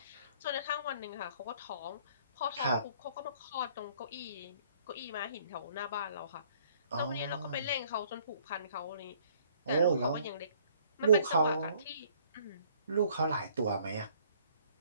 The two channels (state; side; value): inverted; both; correlation -0.60